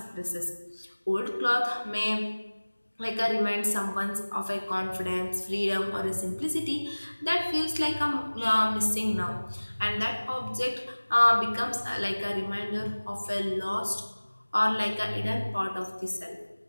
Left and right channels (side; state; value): both; inverted; correlation -1.00